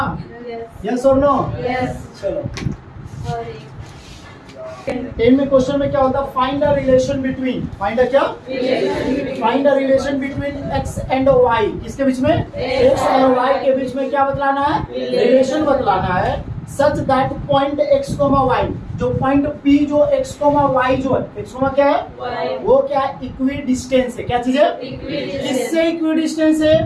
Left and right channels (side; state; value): both; identical; correlation 1.00